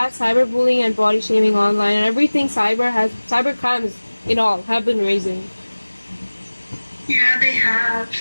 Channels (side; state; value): both; inverted; correlation -1.00